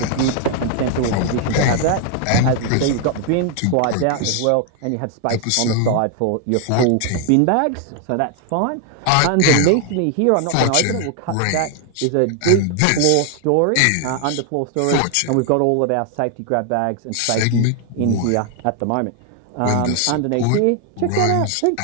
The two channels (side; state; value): both; different; correlation 0.00